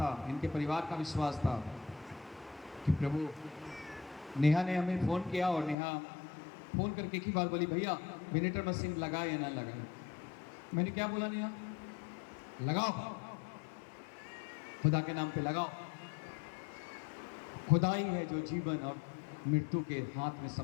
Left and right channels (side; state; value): right; drops out; at 5.8 s